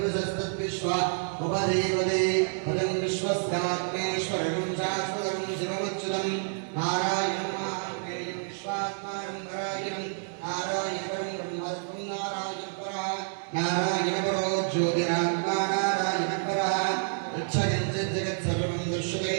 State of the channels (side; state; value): left; silent; 59 dB below the other